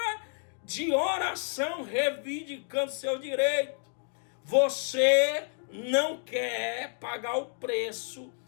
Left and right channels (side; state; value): right; silent; digital silence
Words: de oração reivindicando seu direito. Você não quer pagar o preço